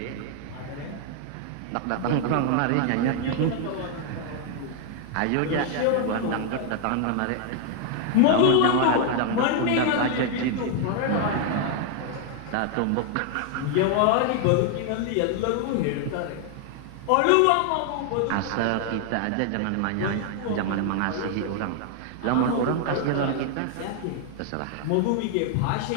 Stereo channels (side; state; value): both; different; correlation 0.00